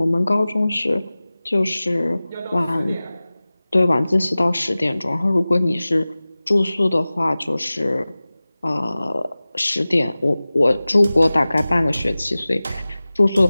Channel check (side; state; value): both; inverted; correlation -0.98